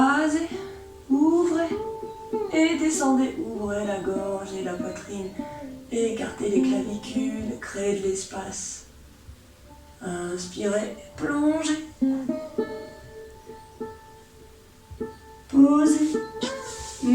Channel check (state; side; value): identical; both; correlation 1.00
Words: ouvrez et descendez. Ouvrez la gorge et la poitrine. Écartez les clavicules, créez de l'espace. Inspirez, plongez. Posez.